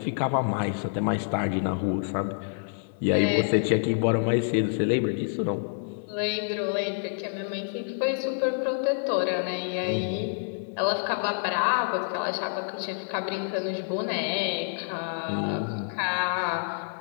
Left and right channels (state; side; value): silent; right; digital silence